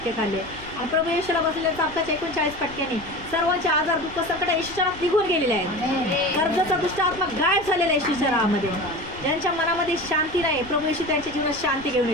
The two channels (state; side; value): noise; left; rumble, 18 dB below the sound